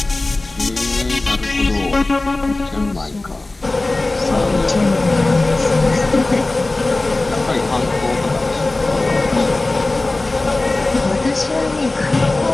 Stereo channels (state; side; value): quieter; right; 3.0 dB